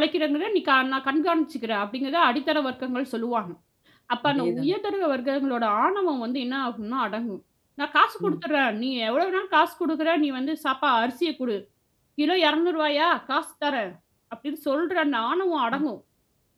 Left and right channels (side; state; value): both; identical; correlation 1.00